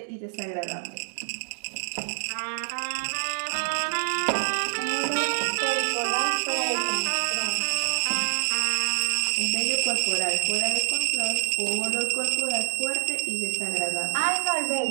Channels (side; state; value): left; silent; digital silence